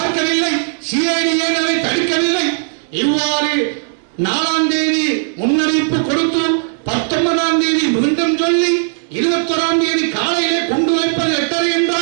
சிஐடி ஏன் அதை தடுக்கவில்லை? இவ்வாறு 4ஆம் தேதி முன்னறிவிப்பு கொடுத்து 19ஆம் தேதி மீண்டும் சொல்லி 21ஆம் தேதி காலையிலே கொண்டு வைப்பது 8:30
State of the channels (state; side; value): silent; left; digital silence